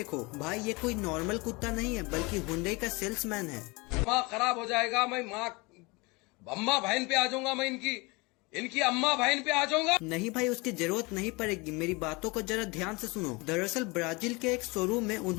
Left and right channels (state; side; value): quieter; right; 26.2 dB